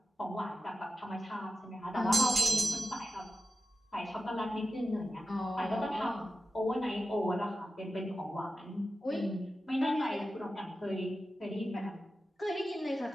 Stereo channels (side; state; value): both; normal; correlation 0.92